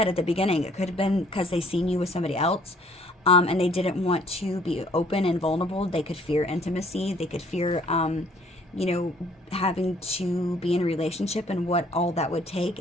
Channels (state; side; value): normal; both; correlation 0.60